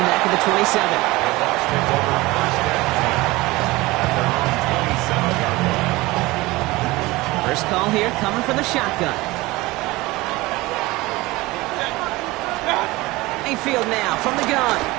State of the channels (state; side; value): quieter; left; 20.7 dB